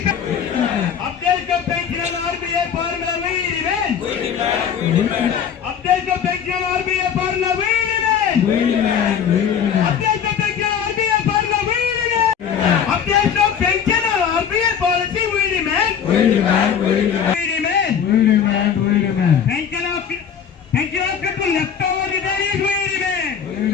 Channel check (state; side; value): quieter; right; 7.8 dB